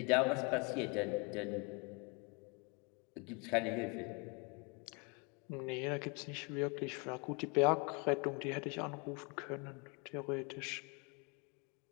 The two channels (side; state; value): right; quieter; 31.2 dB